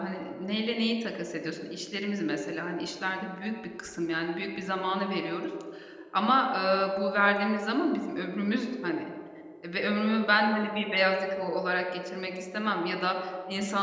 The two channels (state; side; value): identical; both; correlation 1.00